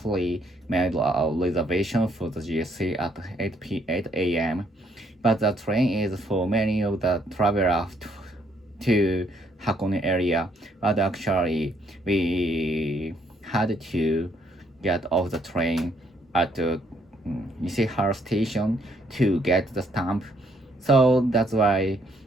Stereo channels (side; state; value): both; normal; correlation 0.69